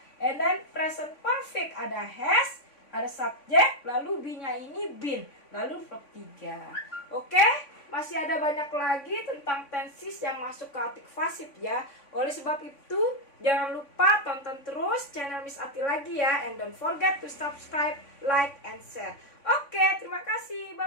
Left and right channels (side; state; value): right; late; 3.5 ms